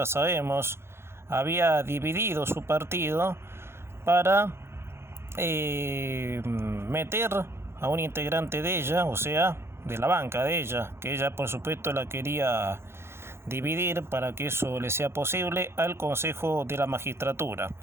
sabemos, había dividido su partido para meter a un integrante de ella, o sea, de la banca de ella, que ella por supuesto la quería dividir para que eso le sea posible al Consejo de la Magistratura.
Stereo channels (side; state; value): left; late; 0.12 ms